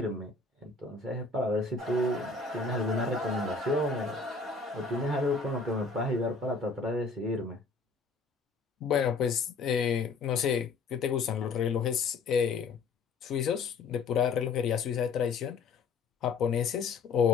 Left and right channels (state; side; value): quieter; right; 4.4 dB